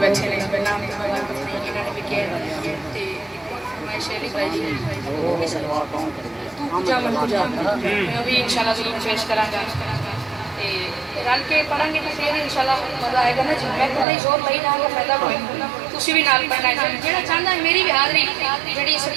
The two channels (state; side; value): drops out; left; at 14.1 s